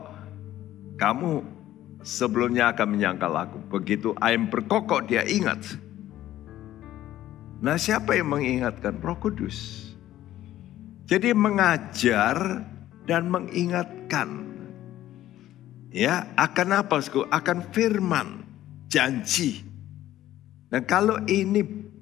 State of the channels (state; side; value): quieter; right; 13.5 dB